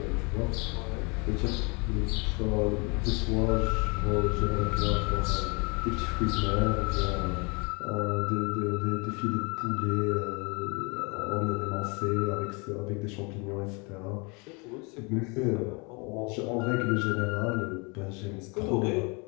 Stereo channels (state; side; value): quieter; right; 30.9 dB